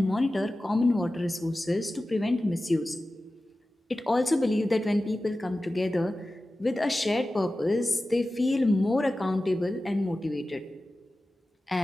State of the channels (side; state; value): both; normal; correlation 0.95